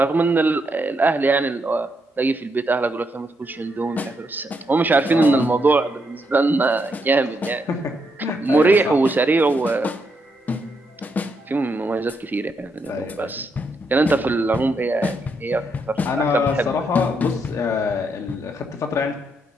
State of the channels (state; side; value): normal; both; correlation 0.79